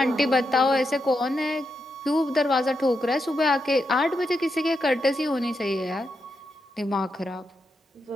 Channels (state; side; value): normal; both; correlation 0.84